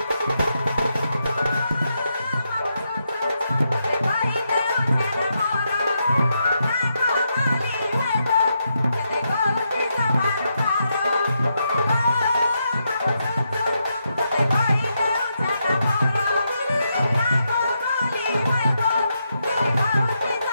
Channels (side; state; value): both; inverted; correlation -0.82